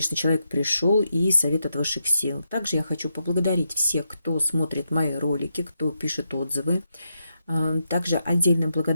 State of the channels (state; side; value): inverted; both; correlation -0.84